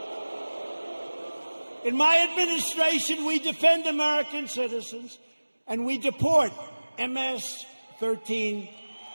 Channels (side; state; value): both; inverted; correlation -1.00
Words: In my administration, we defend American citizens, and we deport MS-13